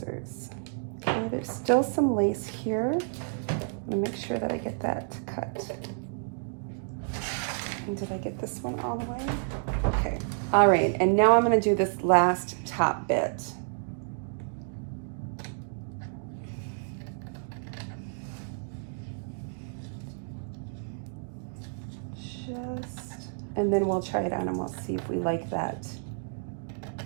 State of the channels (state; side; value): silent; left; digital silence